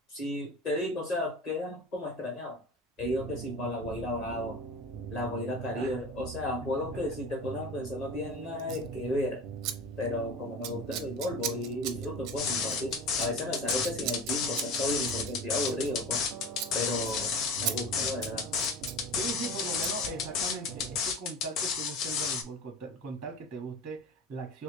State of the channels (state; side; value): normal; both; correlation 0.33